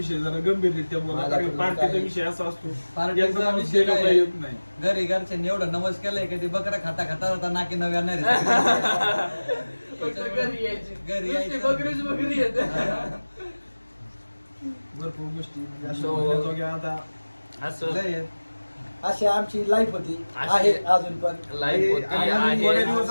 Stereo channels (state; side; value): inverted; both; correlation -1.00